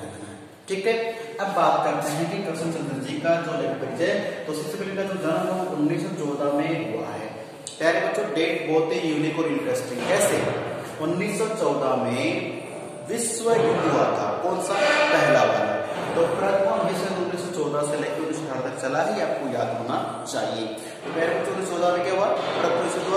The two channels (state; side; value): identical; both; correlation 1.00